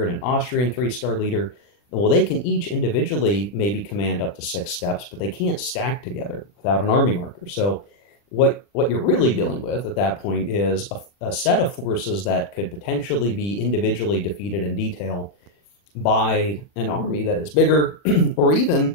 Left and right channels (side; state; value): right; late; 40 ms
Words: and an Austrian 3-star leader. Well, they can each individually maybe command up to 6 steps, but they can't stack together without an army marker. So what you're really dealing with at that point is a set of forces that could potentially be individually defeated in detail by an army that is bigger, or even